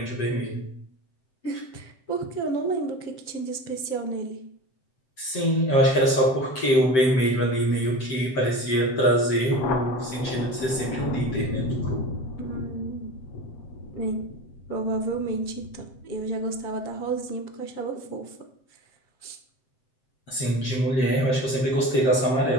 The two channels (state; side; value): late; right; 7.7 ms